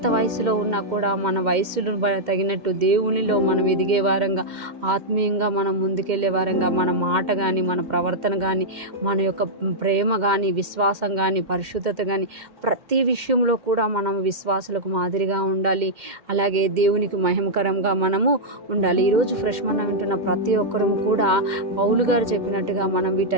వయసులో ఉన్నా కూడా మన వయసును తగినట్టు దేవునిలో మనం ఎదిగే వారంగా ఆత్మీయంగా మనం ముందుకెళ్లే వారంగా మన మాట కానీ మన ప్రవర్తన కానీ మన యొక్క ప్రేమ కానీ విశ్వాసం కానీ పరిశుద్ధత కానీ ప్రతి విషయంలో కూడా మనం విశ్వాసులకు మాదిరిగా ఉండాలి. అలాగే దేవునికి మహిమకరంగా మనము ఉండాలి. ఈరోజు ఫ్రెష్ మన్నా వింటున్న ప్రతి ఒక్కరము కూడా పౌలు గారు చెప్పినట్టుగా మనం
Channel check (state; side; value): late; left; 2.1 ms